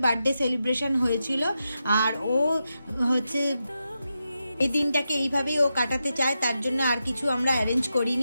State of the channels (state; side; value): inverted; both; correlation -0.88